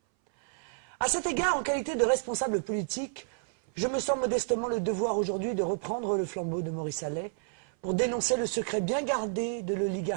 À cet égard, en qualité de responsable politique, je me sens modestement le devoir aujourd'hui de reprendre le flambeau de Maurice Allais pour dénoncer le secret bien gardé de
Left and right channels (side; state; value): left; silent; 58 dB below the other